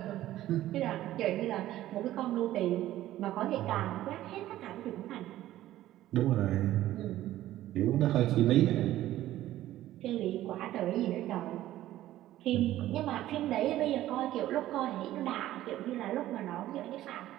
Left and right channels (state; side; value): quieter; left; 14.2 dB